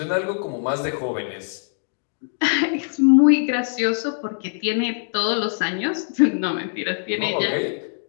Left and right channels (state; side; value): silent; right; digital silence